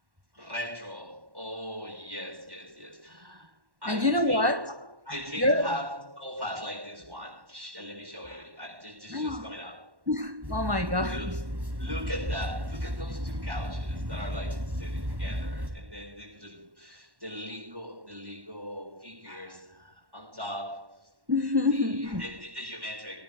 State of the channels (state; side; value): late; left; 1.1 ms